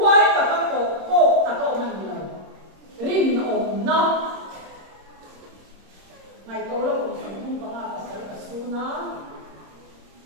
cả các cổ cả cậu mình rồi rin ổn nó ngày câu là cũng không có mà phải cả su nó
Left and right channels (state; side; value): late; left; 26 ms